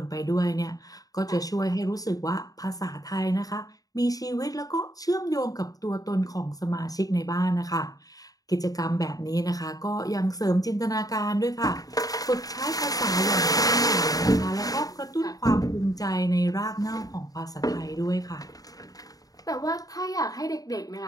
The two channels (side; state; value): right; late; 0.18 ms